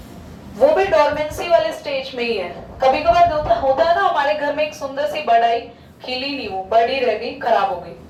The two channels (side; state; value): both; identical; correlation 1.00